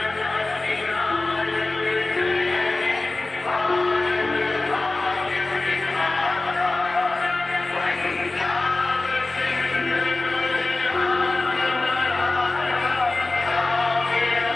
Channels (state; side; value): quieter; right; 3.1 dB